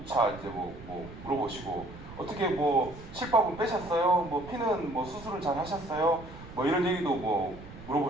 이제 뭐 물어보시고, 어떻게 뭐 실밥은 빼셨어요? 뭐 피는 뭐 수술을 잘 하셨어요? 뭐 이런 얘기도 뭐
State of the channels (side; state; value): right; noise; rumble, 16 dB below the sound